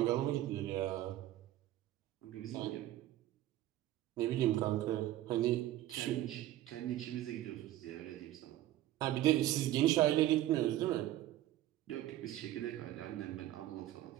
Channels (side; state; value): left; quieter; 14.2 dB